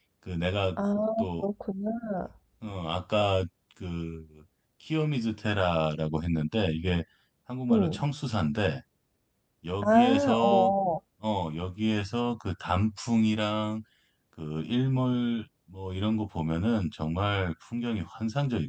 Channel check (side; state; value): both; identical; correlation 1.00